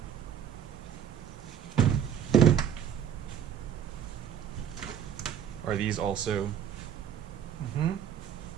Are these also? Mm-hmm.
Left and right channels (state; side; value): quieter; left; 9.2 dB